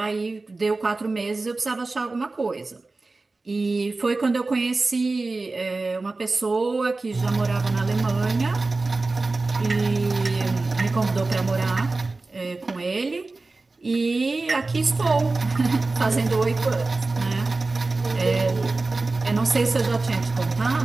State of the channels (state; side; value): quieter; left; 3.5 dB